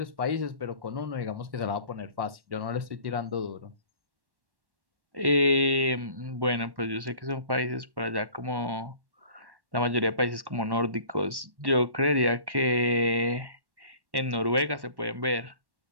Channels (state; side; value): late; left; 1.1 ms